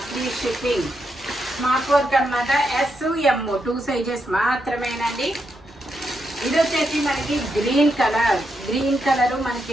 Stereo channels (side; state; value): both; normal; correlation 0.82